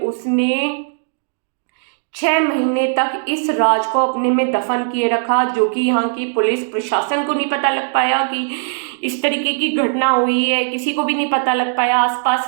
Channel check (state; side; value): silent; left; digital silence